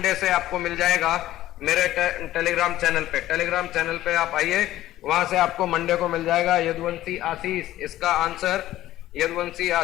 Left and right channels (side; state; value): right; quieter; 14.5 dB